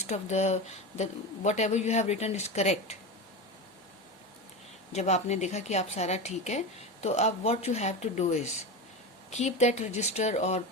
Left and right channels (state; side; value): normal; both; correlation 0.22